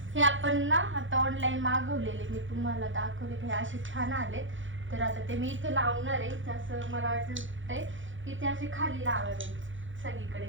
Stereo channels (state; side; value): late; left; 0.56 ms